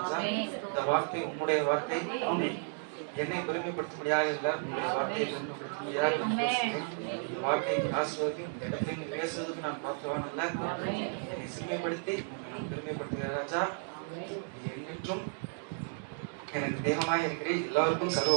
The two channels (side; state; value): left; silent; 56 dB below the other